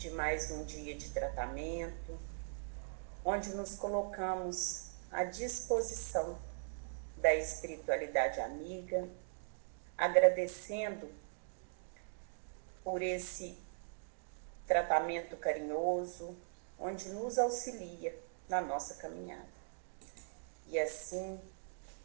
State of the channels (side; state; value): left; silent; digital silence